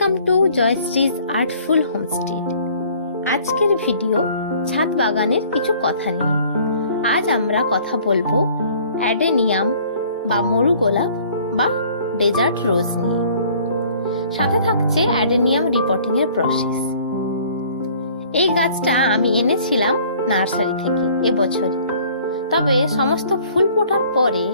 to Joyshree's artful homestay. আজকের video ছাদ বাগানের কিছু কথা নিয়ে। আজ আমরা কথা বলবো অ্যাডেনিয়াম বা মরু গোলাপ বা ডেজার্ট রোজ নিয়ে। সাথে থাকছে অ্যাডেনিয়াম রিপোর্টিং এর প্রসেস। এই গাছটা আমি এনেছিলাম নার্সারি থেকে এবছর, তবে সমস্ত ফুল ফোটার পরে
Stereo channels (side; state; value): both; inverted; correlation -0.55